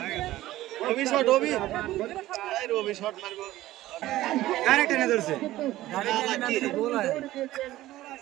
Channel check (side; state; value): left; quieter; 15.7 dB